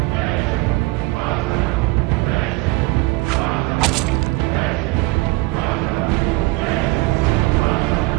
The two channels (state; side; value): quieter; left; 23.1 dB